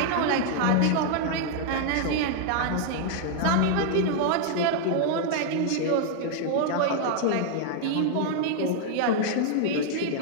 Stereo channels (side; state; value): both; different; correlation 0.00